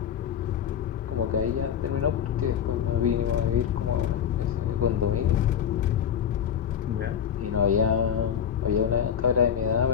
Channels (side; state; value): right; quieter; 8.5 dB